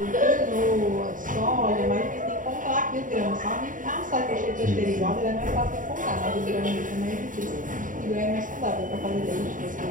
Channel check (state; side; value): late; left; 0.38 ms